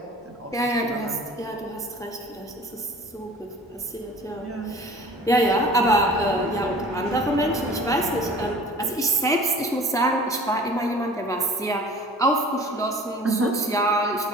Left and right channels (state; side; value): normal; both; correlation 0.46